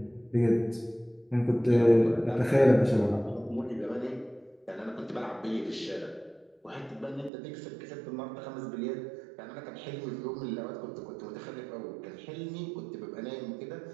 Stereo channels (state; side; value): drops out; left; at 7.3 s